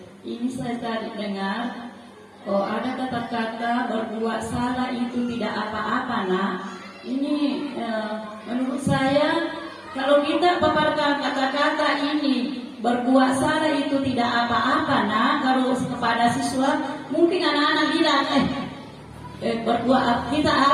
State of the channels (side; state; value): both; identical; correlation 1.00